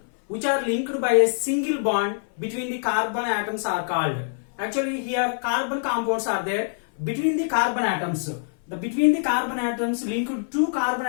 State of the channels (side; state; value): right; silent; 57 dB below the other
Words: which are linked by a single bond between the carbon atoms are called. Actually here carbon compounds are there between the carbon atoms. Between the carbon atoms linked, two carbon